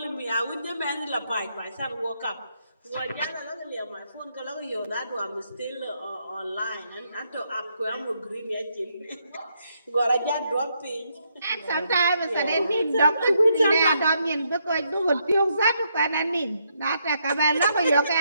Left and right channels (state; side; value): inverted; both; correlation -0.76